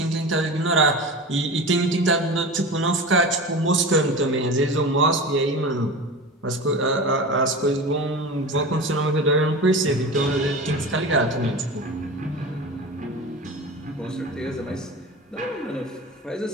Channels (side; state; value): both; normal; correlation 0.30